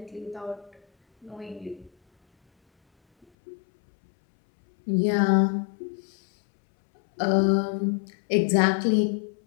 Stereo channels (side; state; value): right; drops out; at 3.2 s